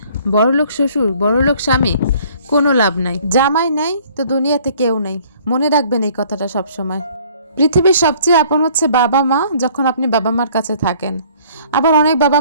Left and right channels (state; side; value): inverted; both; correlation -0.56